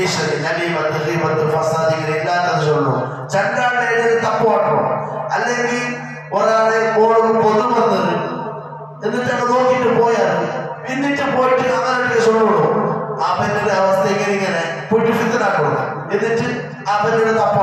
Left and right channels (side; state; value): both; identical; correlation 1.00